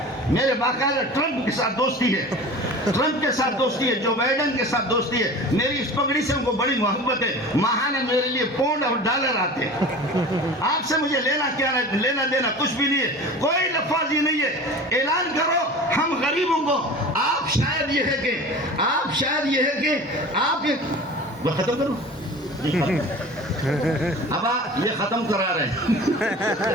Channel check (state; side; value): normal; both; correlation 0.37